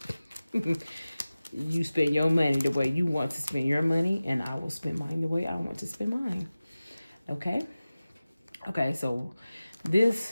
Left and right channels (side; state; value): both; inverted; correlation -0.97